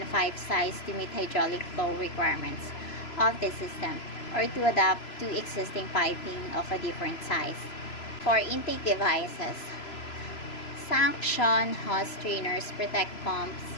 pipe size to meet hydraulic flow requirements of the system or to adapt to existing piping of a different size. For intake devices, suction hose strainers protect pumps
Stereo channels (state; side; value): late; right; 3.0 ms